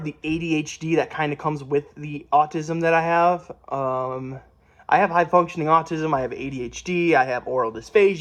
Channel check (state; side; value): identical; both; correlation 1.00